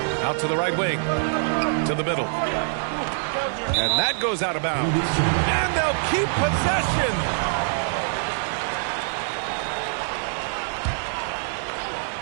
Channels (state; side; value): silent; left; 62 dB below the other